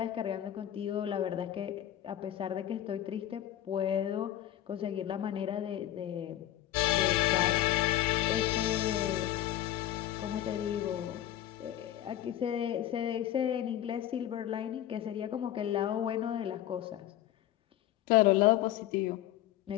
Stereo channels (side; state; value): right; quieter; 12.5 dB